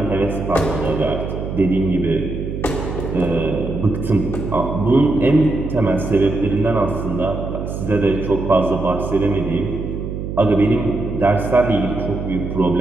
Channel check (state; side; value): noise; right; hum, 5 dB below the sound